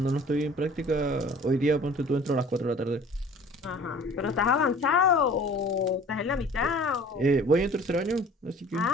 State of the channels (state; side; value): normal; both; correlation 0.48